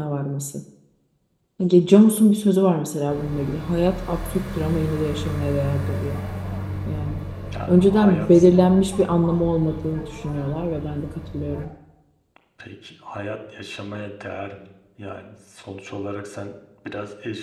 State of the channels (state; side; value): identical; both; correlation 1.00